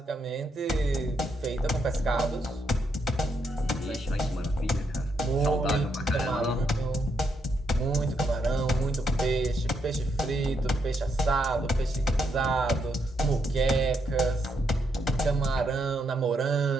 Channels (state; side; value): normal; both; correlation 0.78